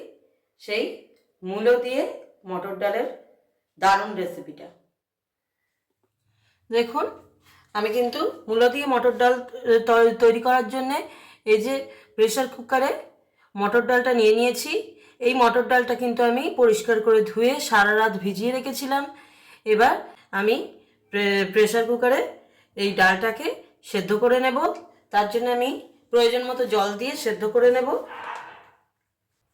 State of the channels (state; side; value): identical; both; correlation 1.00